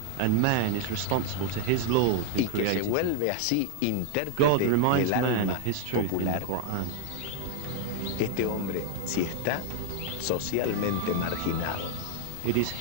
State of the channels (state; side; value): different; both; correlation 0.00